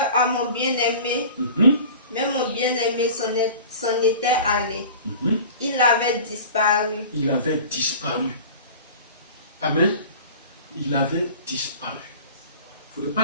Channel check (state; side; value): inverted; both; correlation -0.41